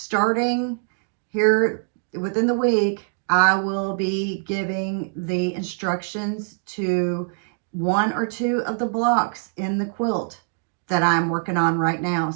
here within the week, I will be giving the instructions to 1 or 2 of the blocks in the quilt that I'm working on right now.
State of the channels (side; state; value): left; silent; digital silence